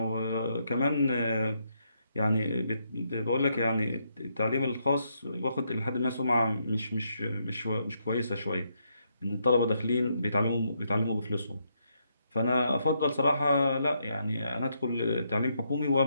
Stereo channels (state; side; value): inverted; both; correlation -0.77